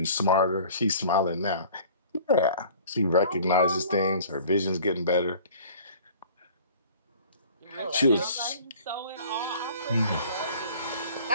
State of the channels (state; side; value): inverted; both; correlation -0.48